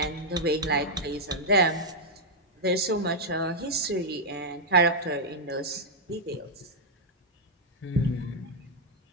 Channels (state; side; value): normal; both; correlation -0.04